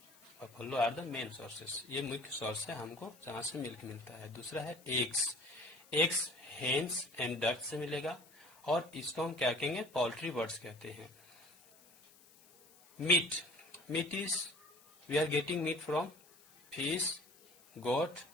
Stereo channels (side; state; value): left; noise; hiss, 25 dB below the sound